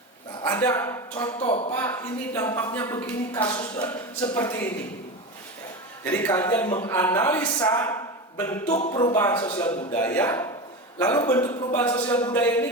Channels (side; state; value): both; normal; correlation 0.23